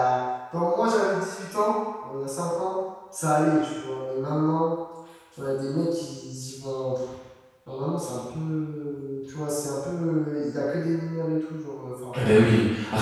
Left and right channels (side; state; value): both; identical; correlation 1.00